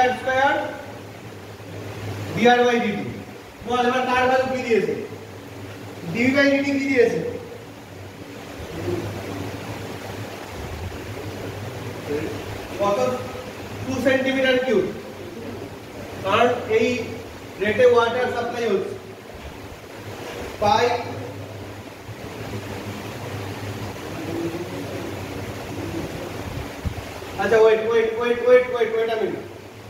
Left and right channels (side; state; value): both; identical; correlation 1.00